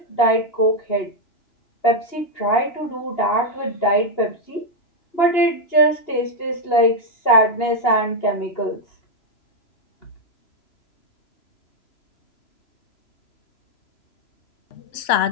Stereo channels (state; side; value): late; right; 2.8 ms